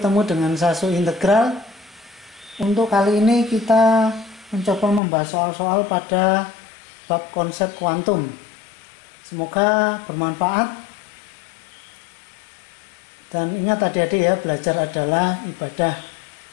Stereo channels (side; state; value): right; drops out; at 5.0 s